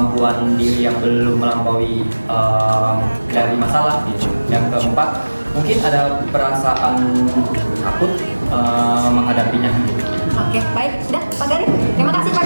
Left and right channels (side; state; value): both; inverted; correlation -1.00